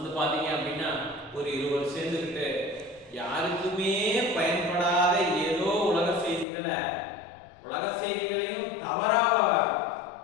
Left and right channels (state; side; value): drops out; right; at 6.5 s